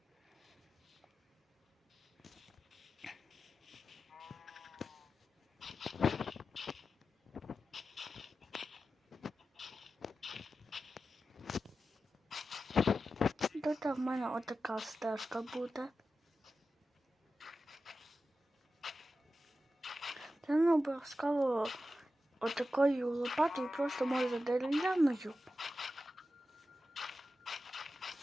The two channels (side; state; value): both; normal; correlation 0.92